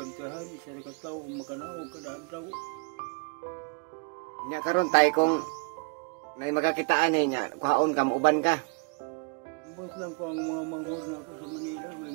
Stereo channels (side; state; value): left; quieter; 33.9 dB